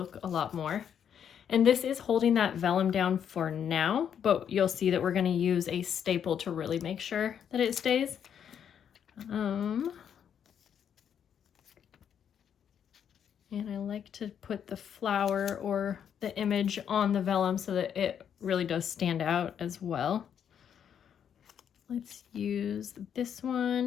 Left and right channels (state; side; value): quieter; right; 8.5 dB